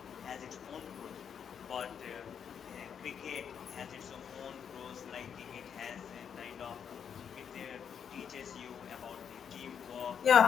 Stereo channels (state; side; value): quieter; right; 7.7 dB